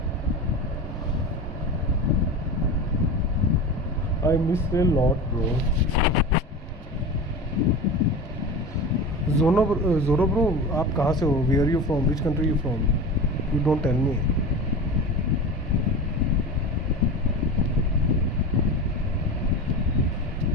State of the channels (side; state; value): both; normal; correlation 0.29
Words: I miss a lot, bro. Zoro bro, आप कहाँ से हो? Where are you from? Which country are you from? You don't tell me.